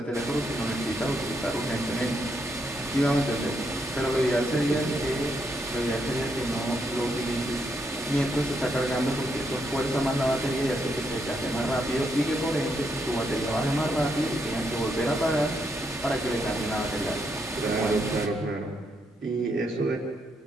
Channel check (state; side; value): normal; both; correlation 0.78